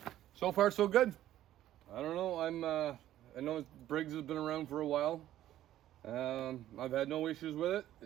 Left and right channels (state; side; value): quieter; left; 13.0 dB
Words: So far so good. I don't know, I know Briggs has been around for a while. I've had no issues with it.